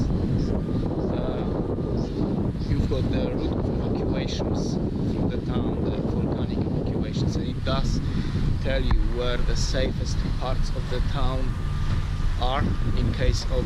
You've got the route of evacuations from the town, the volcanic evacuations, and it does tell you where the safest parts of the town are in case of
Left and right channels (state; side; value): identical; both; correlation 1.00